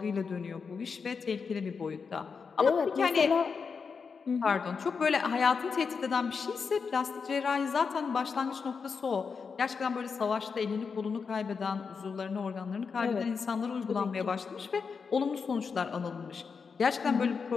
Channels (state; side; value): quieter; right; 5.5 dB